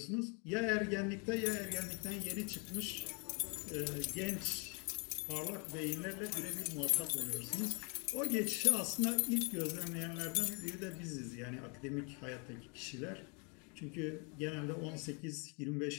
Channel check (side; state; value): right; quieter; 35.4 dB